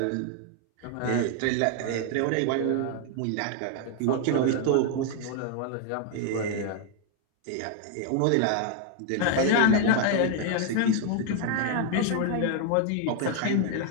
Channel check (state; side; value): different; both; correlation 0.00